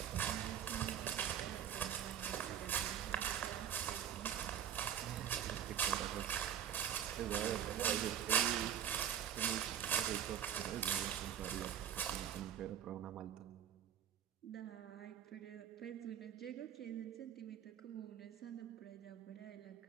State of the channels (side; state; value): left; quieter; 9.7 dB